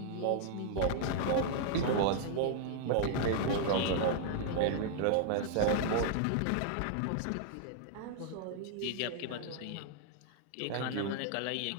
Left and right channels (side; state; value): both; different; correlation -0.01